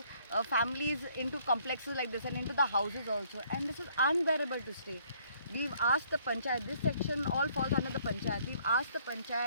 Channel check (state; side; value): inverted; both; correlation -0.63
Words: families, into complexes like this and into the houses also. And this is unbearable to stay. We've asked the panchayat, this section all falls under the panchayat. We've asked the